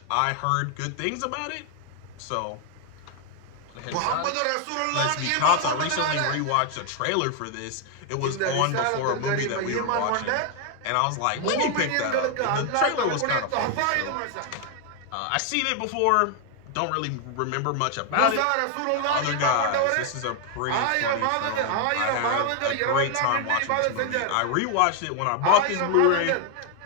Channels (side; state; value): both; different; correlation 0.00